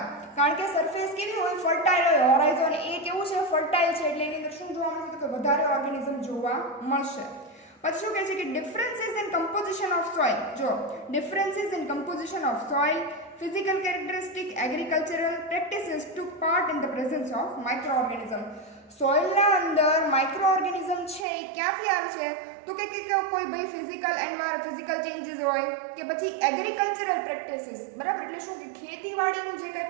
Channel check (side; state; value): left; drops out; at 21.2 s